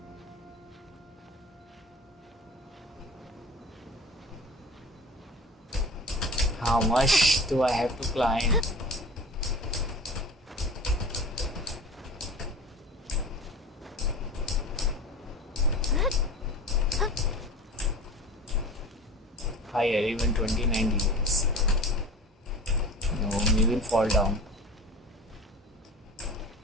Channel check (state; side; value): normal; both; correlation 0.36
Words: how much do I have to climb? Higher, even 29 degrees. No, we will fall down.